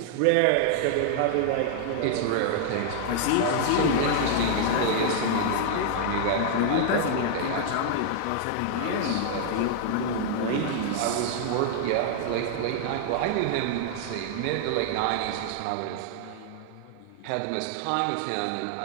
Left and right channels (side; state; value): both; different; correlation -0.01